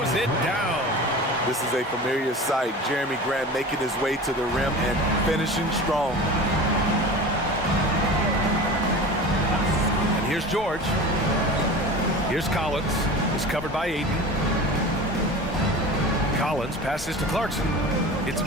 it down. This is a familiar sight. Jeremy Grant making his way to the rim and finishing strong. And here's George. Here's Collins. He's covered by Aiden. Collins passes to Clarkson. It's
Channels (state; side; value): normal; both; correlation 0.34